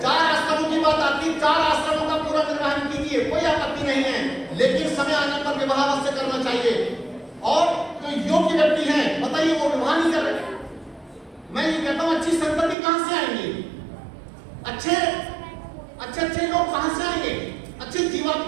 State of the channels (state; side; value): drops out; left; at 12.8 s